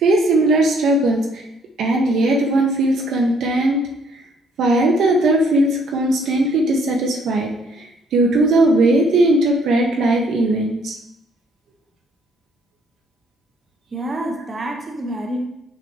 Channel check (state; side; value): normal; both; correlation 0.65